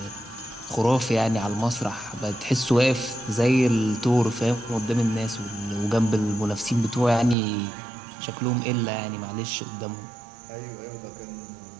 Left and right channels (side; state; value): left; drops out; at 7.4 s